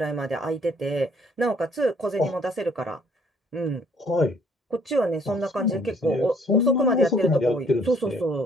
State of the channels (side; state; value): both; normal; correlation 0.62